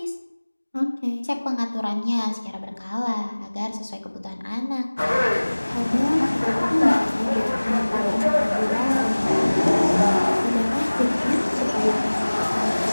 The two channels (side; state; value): both; inverted; correlation -1.00